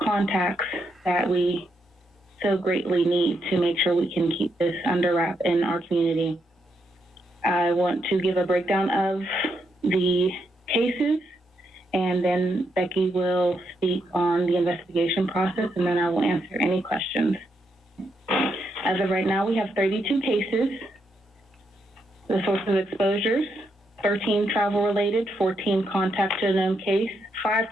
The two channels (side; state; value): both; normal; correlation 0.80